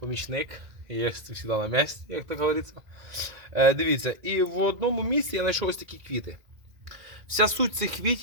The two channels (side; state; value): left; late; 2.0 ms